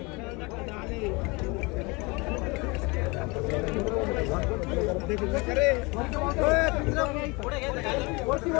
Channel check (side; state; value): right; quieter; 26.8 dB